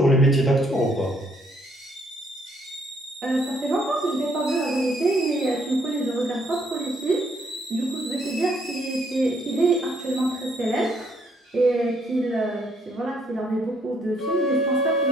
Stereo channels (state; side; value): normal; both; correlation 0.69